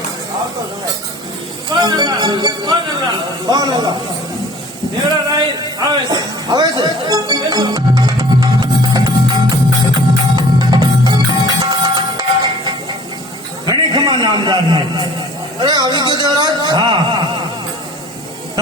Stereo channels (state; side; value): normal; both; correlation 0.48